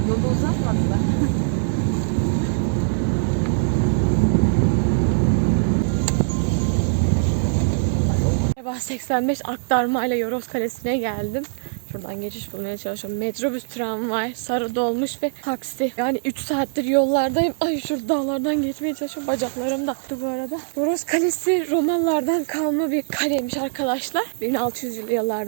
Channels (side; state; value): left; silent; 64 dB below the other